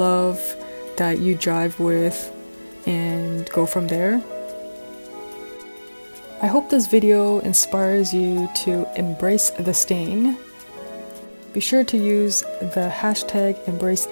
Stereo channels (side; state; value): both; inverted; correlation -1.00